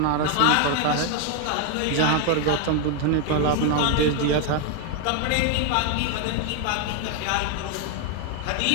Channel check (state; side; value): different; both; correlation 0.01